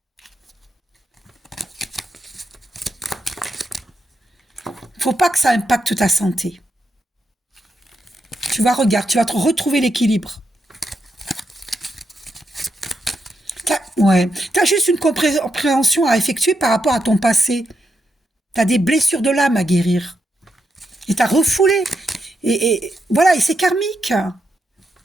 Faut pas que ça impacte ta santé. Tu vas regarder, tu vas te retrouver l'équilibre. Ouais, t'as juste une compréhension à effectuer par rapport à ton passé. T'as des blessures de l'âme à guérir. Et t'as refoulé. Et voilà, et c'est karmique.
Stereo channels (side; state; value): both; normal; correlation 0.83